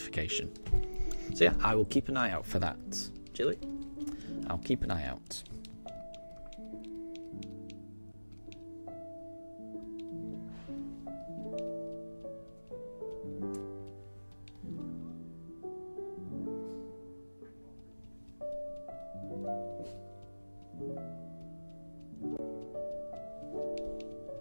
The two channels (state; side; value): inverted; both; correlation -1.00